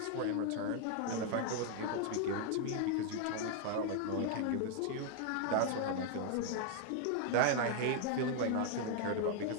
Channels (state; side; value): different; both; correlation 0.00